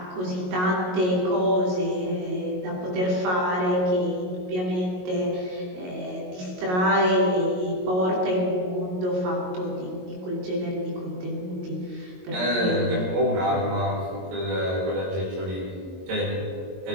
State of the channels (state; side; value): late; left; 22 ms